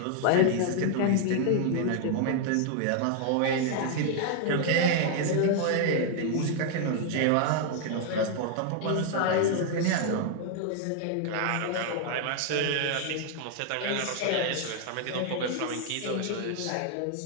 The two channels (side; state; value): both; different; correlation 0.00